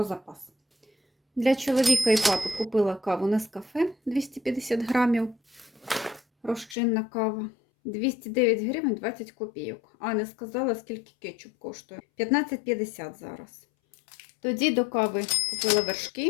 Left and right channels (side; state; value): right; drops out; at 6.8 s